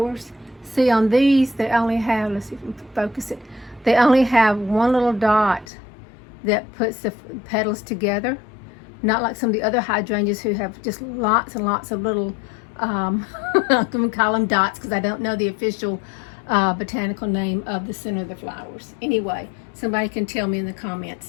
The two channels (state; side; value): drops out; right; at 5.7 s